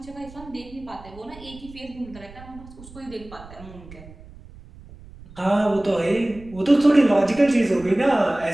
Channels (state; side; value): noise; right; rumble, 19 dB below the sound